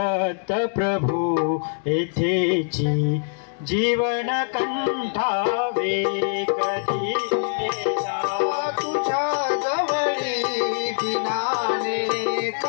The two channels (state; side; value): silent; right; digital silence